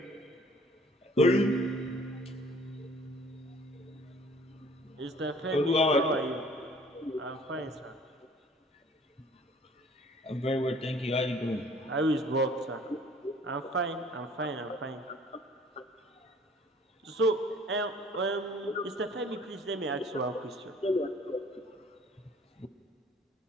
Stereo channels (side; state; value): both; normal; correlation 0.54